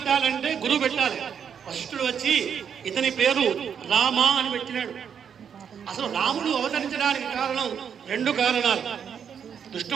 గురువు పెట్టాలి. వశిష్ఠుడు వచ్చి ఇతని పేరు రామ అని పెట్టినాడు. అసలు రాముడు అవతరించడానికి కారణం రెండు కారణాలు.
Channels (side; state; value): left; quieter; 7.6 dB